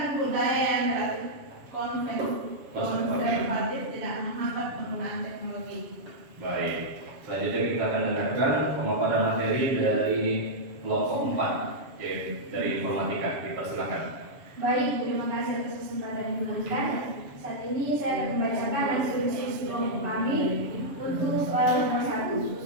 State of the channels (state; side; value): late; left; 7.2 ms